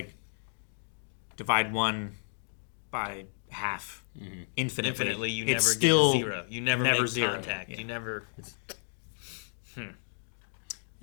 divide one by half infinitely. Infinitely, you it's never still get to zero. You never make zero. contact. Yeah. You never.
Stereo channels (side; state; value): right; silent; digital silence